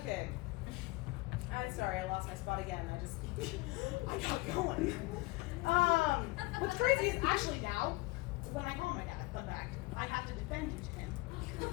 I'm sorry, I lost my spot again. I got going. What's crazy is actually now, when I call my dad, fun fact, I have to defend you to him.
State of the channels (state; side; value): quieter; right; 22.0 dB